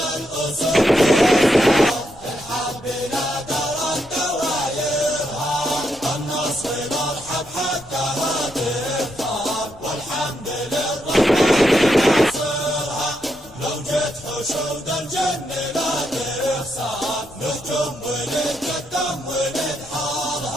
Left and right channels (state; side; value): noise; left; rumble, 24 dB below the sound